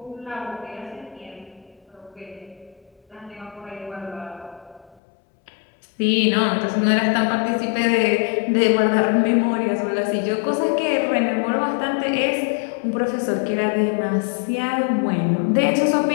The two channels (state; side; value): drops out; right; at 5.0 s